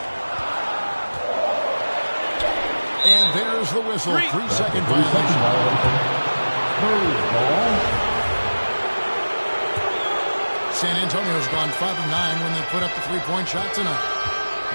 And there's the whistle. 3-second violation. San Antonio's gone 5 of 9 when they put up the 3-point shot tonight.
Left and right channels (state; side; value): inverted; both; correlation -1.00